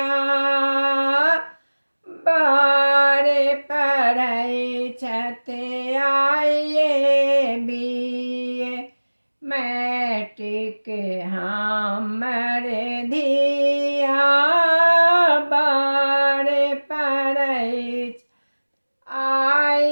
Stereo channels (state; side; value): inverted; both; correlation -1.00